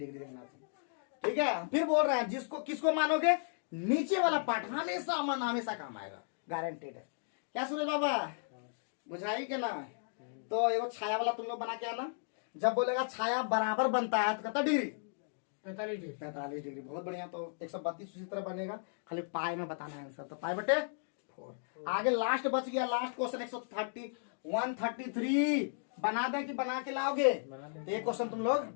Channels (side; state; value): right; silent; digital silence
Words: देखना था, ठीक है। फिर बोल रहे हैं जिसको किसको मानोगे, नीचे वाला पार्ट हमेशा हमेशा काम आएगा, गारंटेड है। क्या सूरज बाबा बुझाई के ना, तो एगो छाया वाला तुम लोग बना के आना, जब बोलेगा छाया बराबर बनता है तो कितना डिग्री, 45 डिग्री, बहुत बढ़िया। तो 132 उसी तरह बनेगा, खाली पाई में बताना है आंसर, तो पाई बटे 4। आगे लास्ट बच गया, लास्ट क्वेश्चन 133 बना दें कि बना के लाओगे? बना दें। तो ये क्वेश्चन तुम